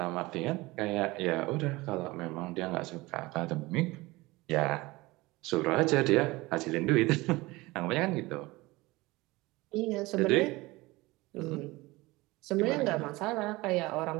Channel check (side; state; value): left; quieter; 21.1 dB